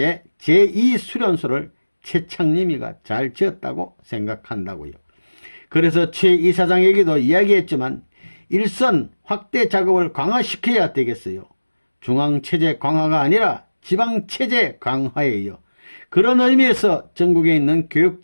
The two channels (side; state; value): both; inverted; correlation -1.00